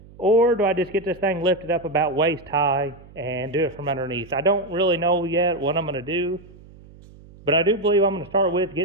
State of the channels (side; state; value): right; noise; hum, 22 dB below the sound